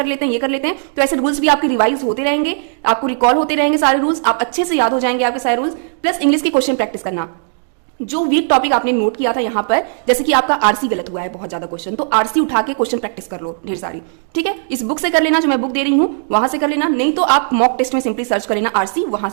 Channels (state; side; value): silent; left; digital silence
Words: लेते हैं, ये कर लेते हैं। तो ऐसे रूल्स भी आपके रिवाइज होते रहेंगे, आपको रिकॉल होते रहेंगे सारे रूल्स, आप अच्छे से याद हो जाएंगे आपके सारे रूल्स। प्लस इंग्लिश की क्वेश्चन प्रैक्टिस करना, जो वीक टॉपिक आपने नोट किया था यहाँ पर, जैसे कि आपका आरसी गलत हुआ है बहुत ज्यादा क्वेश्चन, तो आरसी उठा के क्वेश्चन प्रैक्टिस कर लो ढेर सारी, ठीक है। इस बुक से कर लेना, जो मैं बुक दे रही हूँ वहां से कर लेना, नहीं तो आप मॉक टेस्ट में सिंपली सर्च कर लेना आरसी, वहां